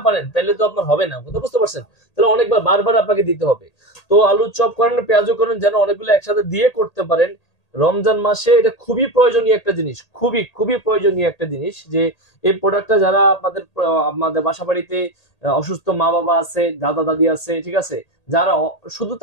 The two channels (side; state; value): right; late; 1.8 ms